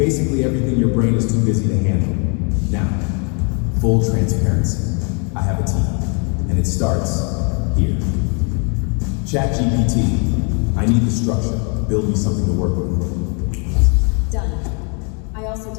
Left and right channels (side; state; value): right; quieter; 36.8 dB